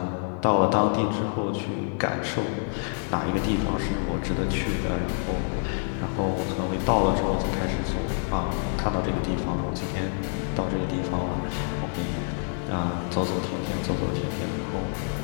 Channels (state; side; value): silent; right; 60 dB below the other